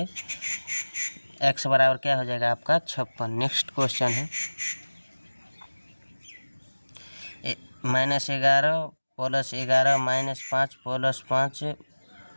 x बराबर क्या हो जाएगा आपका? 56। नेक्स्ट क्वेश्चन है, -11 + 11 -5 + 5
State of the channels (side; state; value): both; inverted; correlation -1.00